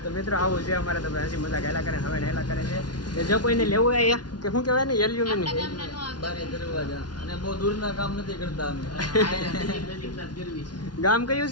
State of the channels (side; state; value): right; late; 0.70 ms